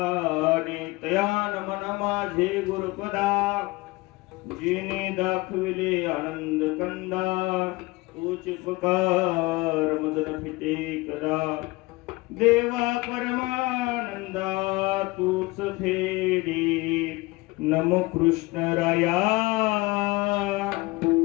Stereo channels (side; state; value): right; quieter; 22.3 dB